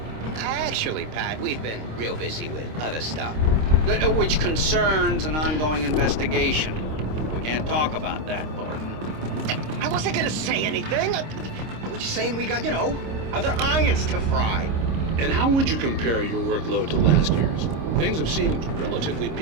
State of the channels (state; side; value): late; left; 26 ms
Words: Actually, Pat, we've been real busy with other stuff, which concerns an ongoing investigation. We can't talk about that, Thornton. I wasn't gonna say anything. I was just saying we got, other irons to fry. And how would you compare your workload to last year's? Things have seemed relatively